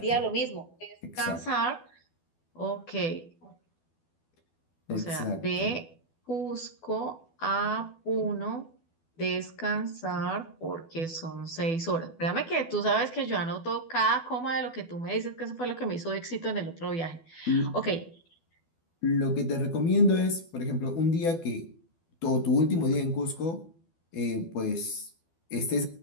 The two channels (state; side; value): late; right; 12 ms